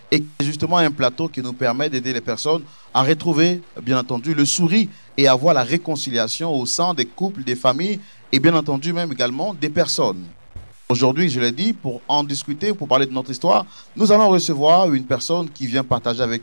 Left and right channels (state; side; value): inverted; both; correlation -1.00